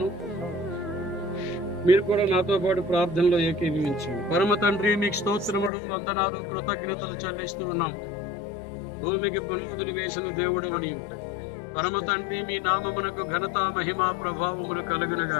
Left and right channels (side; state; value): right; drops out; at 5.7 s